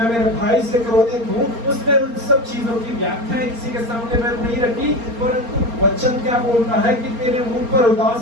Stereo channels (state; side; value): late; left; 4.3 ms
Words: मेरे भाई से क्रोधित हूँ। उसने उन सब चीजों की व्याख्या किसी के सामने मैं नहीं रखी, परंतु वचन क्या बोलता है कि तेरे मुंह पर